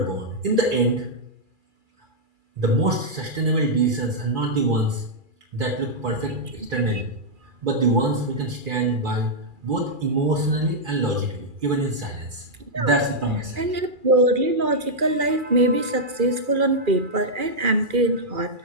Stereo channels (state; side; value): late; left; 2.4 ms